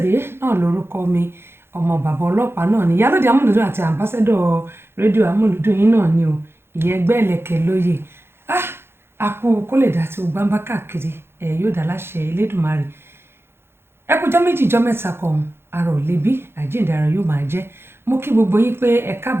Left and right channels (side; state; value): left; late; 0.11 ms